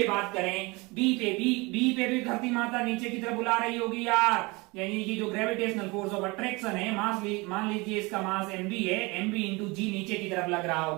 बात करें, बी पे भी धरती माता नीचे की तरफ बुला रही होगी यार, यानी कि जो ग्रेविटेशनल फोर्स ऑफ अट्रैक्शन है, मान लीजिए इसका मास mb है, mb इंटू जी नीचे की तरफ लग रहा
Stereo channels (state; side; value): quieter; left; 25.4 dB